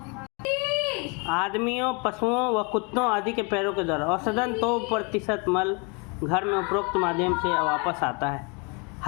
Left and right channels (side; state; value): right; quieter; 32.3 dB